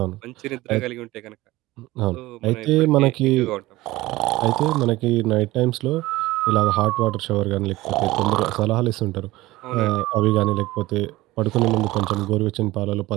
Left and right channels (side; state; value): left; quieter; 18.6 dB